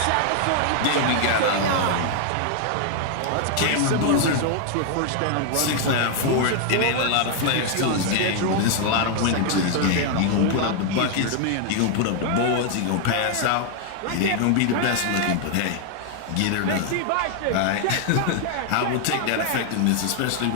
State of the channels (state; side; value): different; both; correlation 0.00